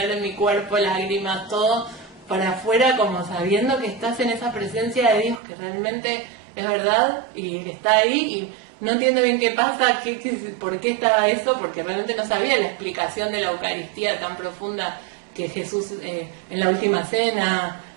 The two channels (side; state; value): left; drops out; at 5.4 s